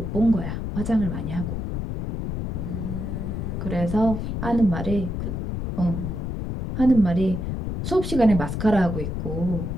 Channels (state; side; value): noise; left; rumble, 4 dB below the sound